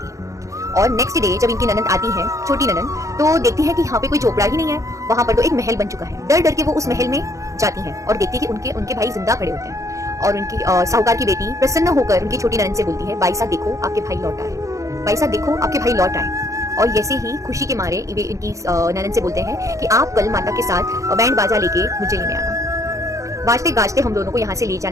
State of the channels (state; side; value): late; left; 0.15 ms